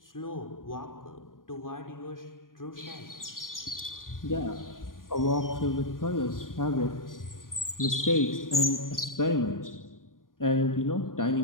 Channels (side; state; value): right; late; 0.90 ms